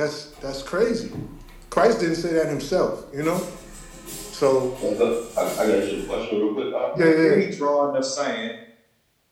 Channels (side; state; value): both; identical; correlation 1.00